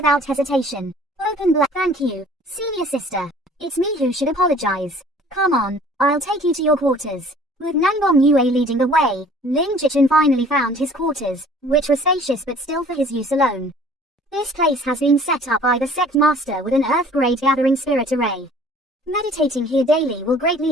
hesitation. Open black. Thank you, senior sister. It's me who should apologize. Come on, I'll take you to your quarters. With Nangbom Yue leading the way, Lin Jichin finally found his quarters, which were spacious but still for his use alone. This place has been set up by the sect master with an earth-grade gathering spirit array. Meditating here daily will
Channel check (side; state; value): both; normal; correlation 0.51